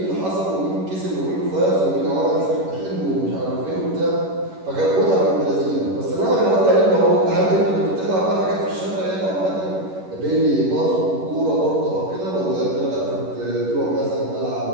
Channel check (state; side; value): late; left; 11 ms